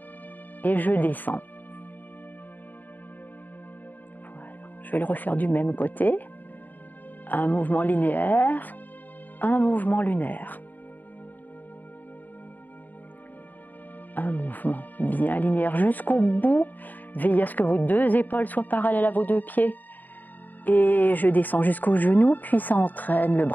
et je descends. Voilà. Je vais le refaire du même côté, un mouvement linéaire, un mouvement lunaire. Un mouvement bien linéaire jusqu'au bout, veillez à ce que vos deux épaules soient parallèles à vos deux pieds. Et je descends jusqu'au genou, puis ça entraîne le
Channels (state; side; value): late; right; 0.086 ms